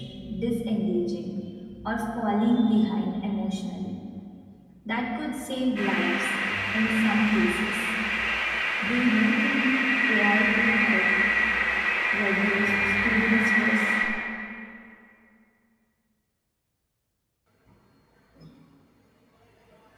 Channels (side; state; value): both; identical; correlation 1.00